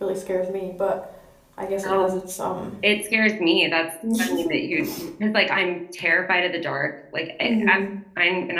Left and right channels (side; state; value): both; identical; correlation 1.00